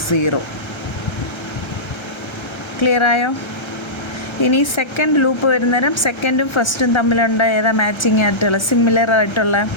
0. ക്ലിയർ ആയോ? ഇനി സെക്കൻഡ് ലൂപ്പ് വരുന്നേരം സെക്കൻഡും ഫസ്റ്റും തമ്മിലുണ്ട് ഏതാ മാച്ചിങ് ആയിട്ടുള്ള സിമിലർ ആയിട്ടുള്ള?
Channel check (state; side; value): late; right; 1.3 ms